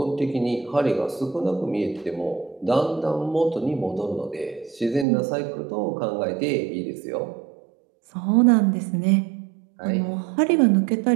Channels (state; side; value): drops out; left; at 5.1 s